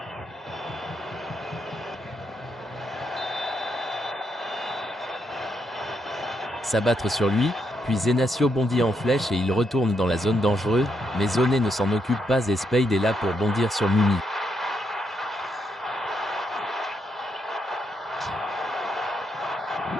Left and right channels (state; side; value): normal; both; correlation 0.78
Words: S'abattre sur lui, puis Zenacio bondit en flèche et il retourne dans la zone dangereuse, mais Zoné ne s'en occupe pas et Spade est là pour bondir sur Mumi.